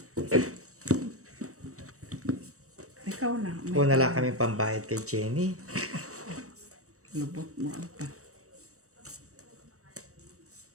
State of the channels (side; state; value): left; late; 0.65 ms